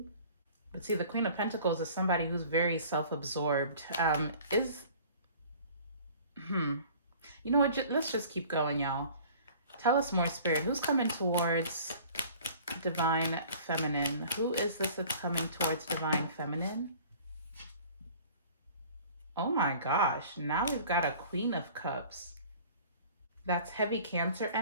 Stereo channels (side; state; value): both; inverted; correlation -0.48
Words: But see, the Queen of Pentacles is somebody who's very self-absorbed. You know what? Let's just keep going, y'all. Tell us more, Spirit. Who's coming towards Divine Feminine? Who is this that's coming towards Divine Feminine? Oh my gosh. Now we've got a Queen of Cups. That's heavy Cancer